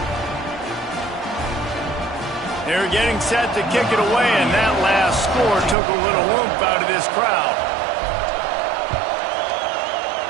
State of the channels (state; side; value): drops out; left; at 5.8 s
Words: They're getting set to kick it away, and that last score took a little oomph out of this crowd.